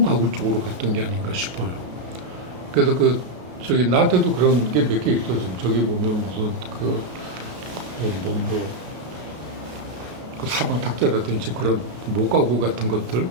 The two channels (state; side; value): late; left; 32 ms